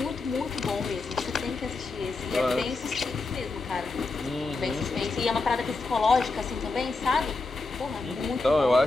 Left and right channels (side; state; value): right; quieter; 3.5 dB